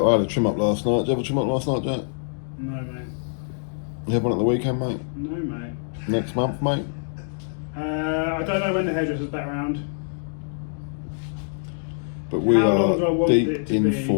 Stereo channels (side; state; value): right; silent; digital silence